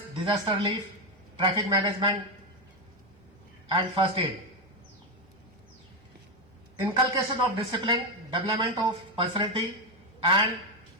disaster relief, traffic management, and first aid. Inculcation of discipline, development of personality, and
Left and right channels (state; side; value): normal; both; correlation 0.09